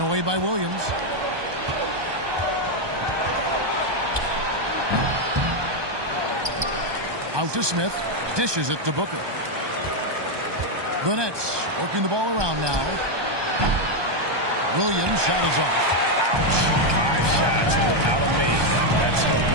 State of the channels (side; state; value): left; late; 1.2 ms